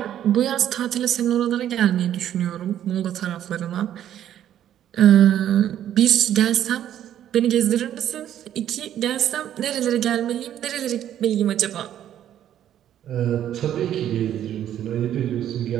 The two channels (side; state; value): left; quieter; 10.9 dB